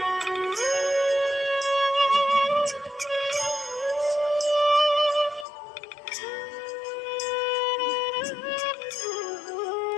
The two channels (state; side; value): drops out; right; at 5.5 s